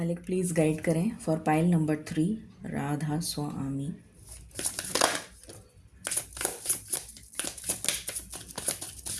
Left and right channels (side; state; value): both; identical; correlation 1.00